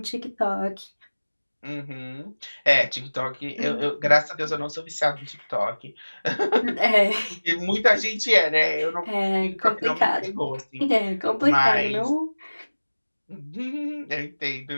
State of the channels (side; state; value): both; inverted; correlation -1.00